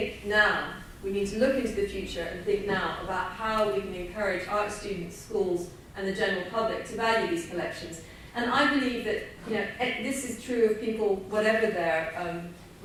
now, we need to look into the future and think now about how we can encourage art students, schools and the general public to value these collections. And I believe that this is true of people, whatever their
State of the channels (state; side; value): identical; both; correlation 1.00